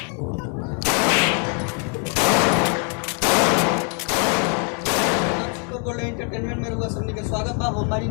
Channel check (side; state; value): right; quieter; 39.5 dB